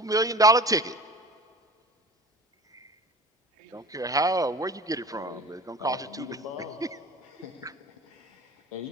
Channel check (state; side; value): normal; both; correlation 0.39